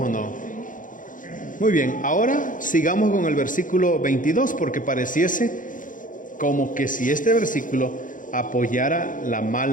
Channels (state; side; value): late; right; 0.38 ms